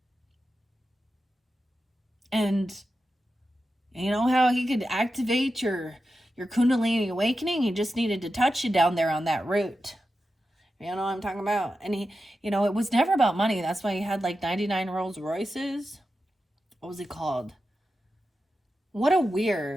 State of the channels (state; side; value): normal; both; correlation 0.91